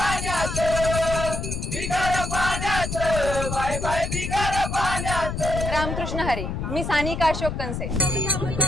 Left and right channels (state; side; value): noise; left; rumble, 4 dB below the sound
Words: बिगर पाण्याचं बाय बाय बिगर पाण्याचं. रामकृष्ण हरी. मी सानिका अशोक कंसे.